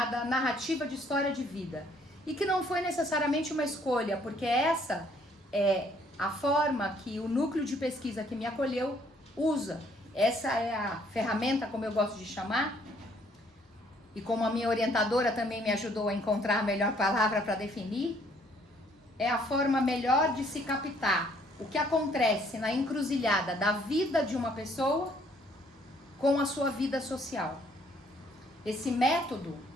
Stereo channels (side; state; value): both; normal; correlation 0.64